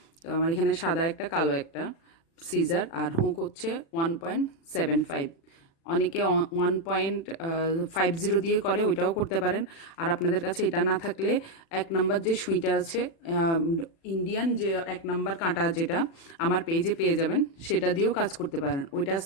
তো আমার এখানে সাদা একটা কালো একটা সিজার, আর হুক হচ্ছে 1.75। অনেকে 1.50 দিয়ে করে, ওইটাও করতে পারেন। আর আপনাদের কাছে এটা না থাকলে 1 নাম্বার যে সুইটা আছে, ইন্ডিয়ান যে 1 নাম্বার কাঁটা, যেটা আমার পেজে পেয়ে যাবেন, সেটা দিয়েও কাজ করতে পারেন। ওইটার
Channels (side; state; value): right; late; 36 ms